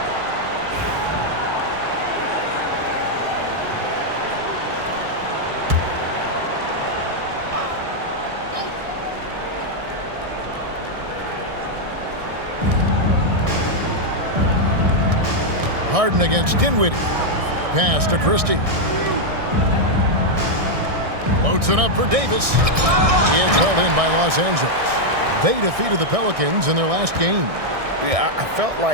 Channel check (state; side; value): late; left; 1.6 ms